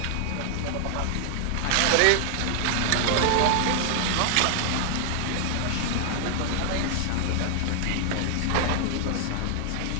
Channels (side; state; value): both; different; correlation 0.00